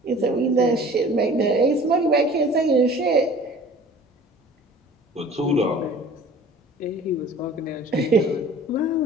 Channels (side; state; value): both; normal; correlation 0.46